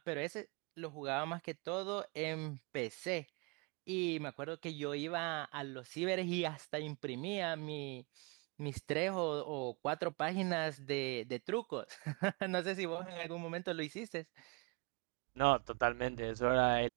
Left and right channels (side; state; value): left; quieter; 30.9 dB